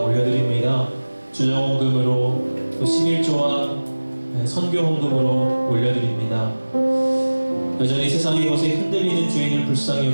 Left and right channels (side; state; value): both; inverted; correlation -1.00